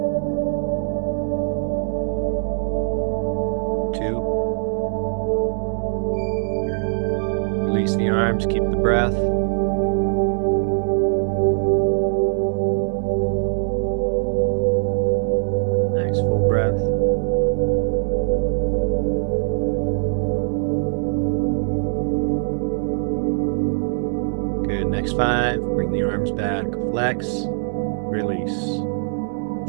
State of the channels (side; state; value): left; silent; digital silence